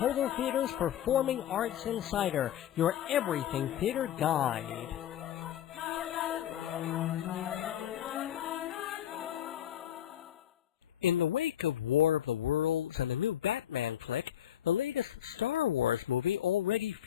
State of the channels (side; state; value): right; quieter; 11.2 dB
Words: Theater's Performing Arts Insider, your everything theater guide. In the wake of War of the Worlds and the new Batman flick, the latest Star Wars movie already